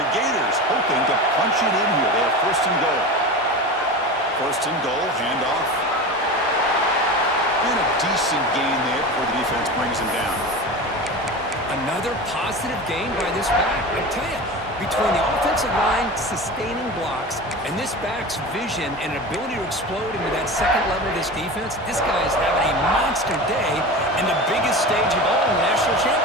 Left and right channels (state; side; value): normal; both; correlation 0.29